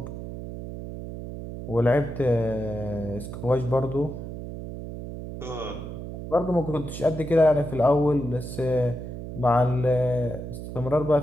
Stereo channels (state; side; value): noise; right; hum, 9 dB below the sound